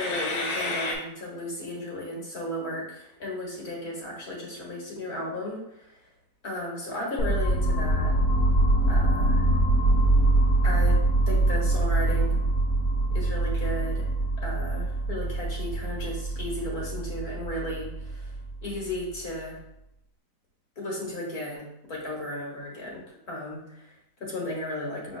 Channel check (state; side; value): late; right; 4.5 ms